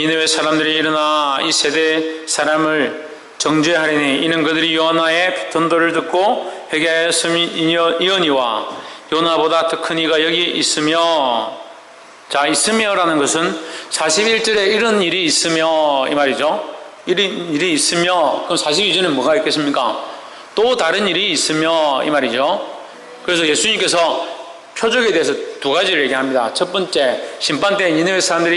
사람들이 일어나 이 세대 사람을 정죄하리니 이는 그들이 요나의 전도를 듣고 회개하였음이니와 요나보다 더 큰 이가 여기 있으며, 자, 있으며라는 것은 41절에 이런 일이 있으며 이 말이죠. 일이 있으며, 그럼 42절에 뭐가 있겠습니까? 또 다른 일이 있으며 이 말이죠. 그래서 예수님께서 표적에 대해서 두 가지를 얘기합니다. 첫 번째, 심판 때 니느웨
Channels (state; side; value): identical; both; correlation 1.00